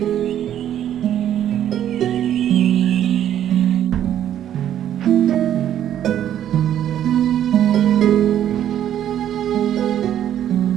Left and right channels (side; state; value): left; quieter; 10.7 dB